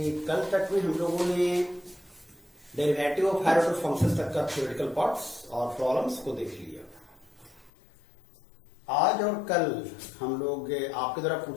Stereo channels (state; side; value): drops out; right; at 7.7 s